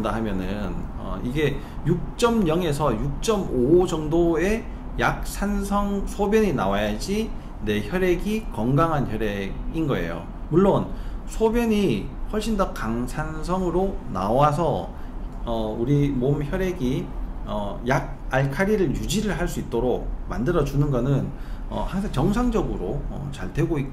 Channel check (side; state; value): both; identical; correlation 1.00